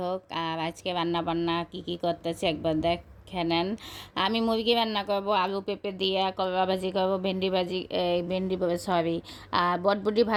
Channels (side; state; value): both; identical; correlation 1.00